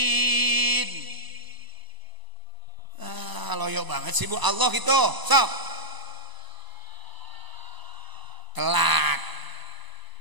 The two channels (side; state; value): left; late; 1.0 ms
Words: Loyo banget sih Bu, Allah gitu. Sok. Telat.